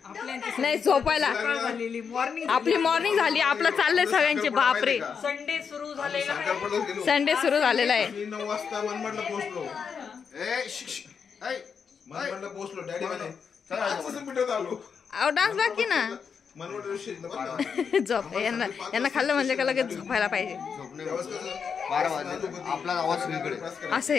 नाही झोपायला आपली मॉर्निंग झाली आपलं चाललंय सगळ्यांचे बापरे संडे सुरू झालेला संडे सुरू झालेला आहे 9 वाजता मनमाडला पोहोचलो मनमाडला पोहोचलो डॅडी म्हणे पिठवत आलो अहो डान्स बाकी ना मनमाड झोप यांना खाल्लं म्हणजे का लगेच झोपायला पाहिजे आपला आवाज सगळीकडे असं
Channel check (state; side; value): quieter; right; 6.4 dB